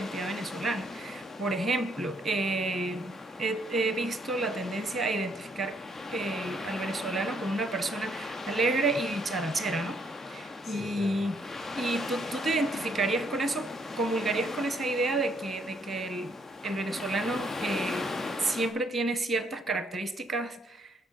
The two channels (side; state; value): both; normal; correlation 0.70